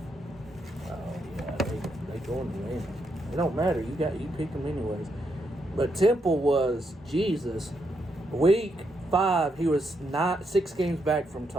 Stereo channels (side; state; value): both; normal; correlation 0.79